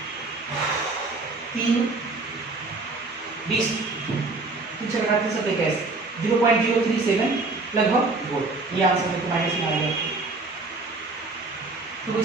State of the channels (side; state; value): left; quieter; 3.5 dB